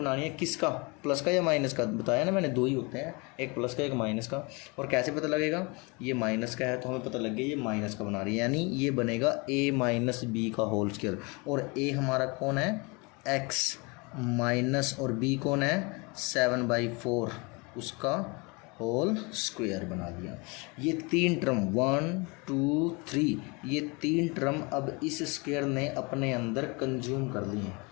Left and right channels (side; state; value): right; quieter; 28.8 dB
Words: है किसका, प्लस का या माइनस का, बताया ना मैंने, दो ही होते हैं, एक प्लस का एक माइनस का। और कैसे पता लगेगा, ये माइनस का है तो हमें पता लग गया ये माइनस का बना रही है, यानी ये बनेगा a-b का होल स्क्वायर, और a हमारा कौन है x माइनस, और b कौन है 7/4, उसका होल स्क्वायर बना दिया। ये 3 टर्म 1 2 3, ये 3 टर्म अब इस स्क्वायर ने अपने अंदर कंज्यूम कर लिए हैं।